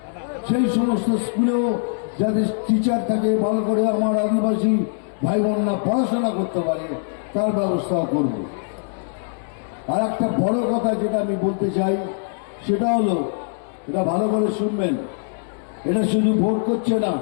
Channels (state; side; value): silent; right; 64 dB below the other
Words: সেই সমস্ত স্কুলেও যাদের টিচার থাকে, ভালো করে আমার আদিবাসী ভাই বোনরা পড়াশোনা করতে পারে, তার ব্যবস্থাও করব। আর একটা বড় কথা যেটা আমি বলতে চাই, সেটা হলো, এটা ভালো করে শুনবেন, এটা শুধু ভোট করছে না,